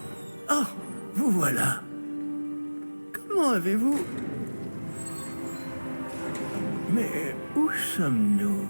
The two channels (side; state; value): both; inverted; correlation -1.00